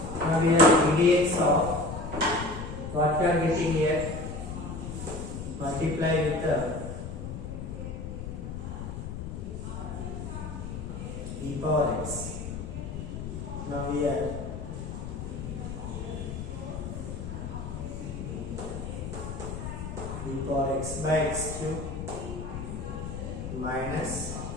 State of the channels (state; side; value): noise; left; rumble, 6 dB below the sound